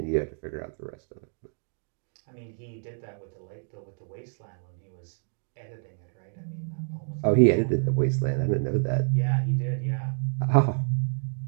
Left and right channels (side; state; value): left; silent; digital silence